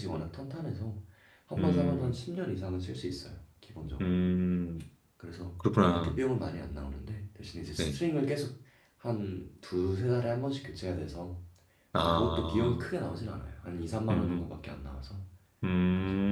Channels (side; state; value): both; identical; correlation 1.00